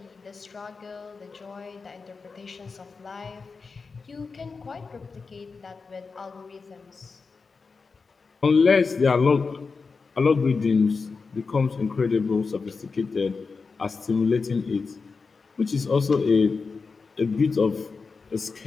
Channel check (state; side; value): quieter; right; 4.6 dB